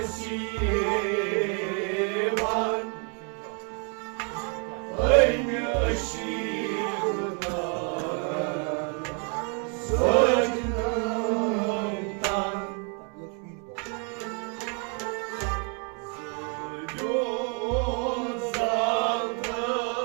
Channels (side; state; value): left; quieter; 39.4 dB